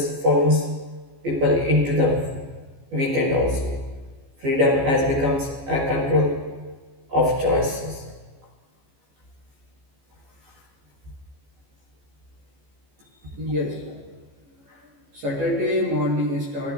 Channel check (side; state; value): left; late; 14 ms